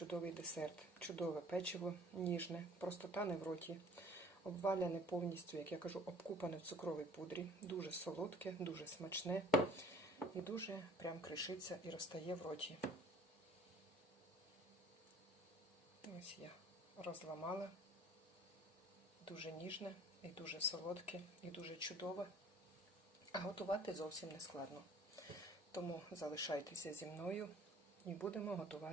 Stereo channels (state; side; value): normal; both; correlation 0.52